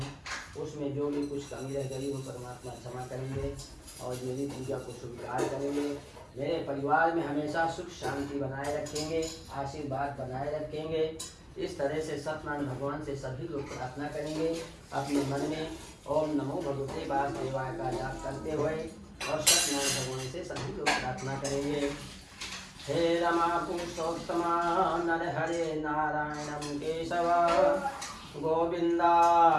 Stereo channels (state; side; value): identical; both; correlation 1.00